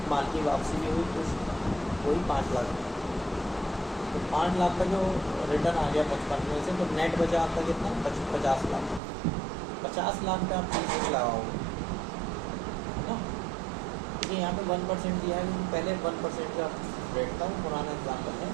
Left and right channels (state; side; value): drops out; left; at 9.0 s